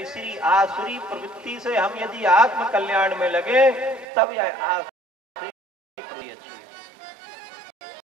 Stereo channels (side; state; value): left; drops out; at 4.0 s